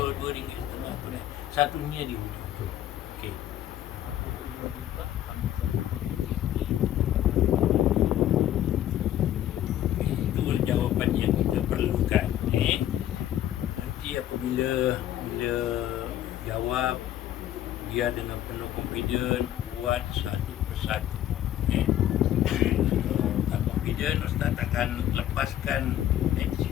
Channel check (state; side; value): quieter; right; 12.0 dB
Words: tunai. Satunya dia. Okey. Jawapan yang kita perlukan. Nanti apabila jawab, dia dengan penuh confident buat satu persatu. Tak confident, Ustaz akan lepaskan